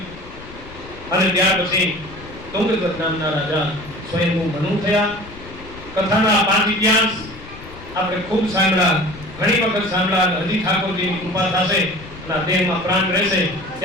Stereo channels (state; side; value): noise; left; rumble, 17 dB below the sound